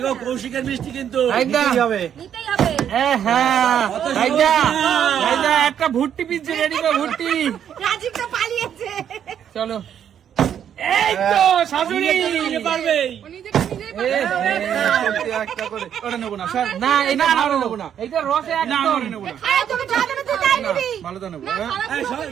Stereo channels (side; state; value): left; quieter; 9.2 dB